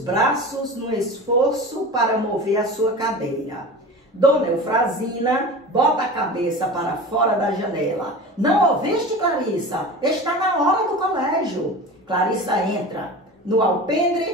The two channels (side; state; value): both; normal; correlation 0.33